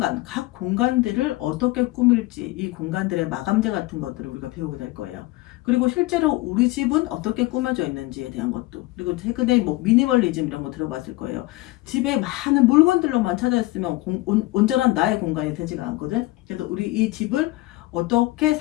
각 공간들을 어떻게 꾸밀지, 이 공간들의 마감재 같은 것들을 우리가 배우게 될 거예요. 그리고 실제로 우리 집은 어떻게 꾸며져 있는지에 대한 것도, 그리고 최근에 뭐 미니멀리즘 이런 거 들어봤을 거예요. 집에 많은 물건들로만 찾아 있으면 온전한 나의 공간이 되지가 않거든. 그래서 우리 이 집을 어떻게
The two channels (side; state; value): right; quieter; 19.9 dB